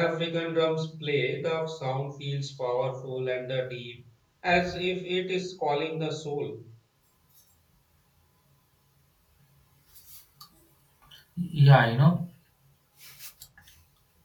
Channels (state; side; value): identical; both; correlation 1.00